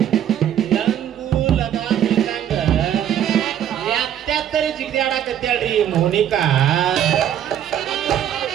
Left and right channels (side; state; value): left; quieter; 10.3 dB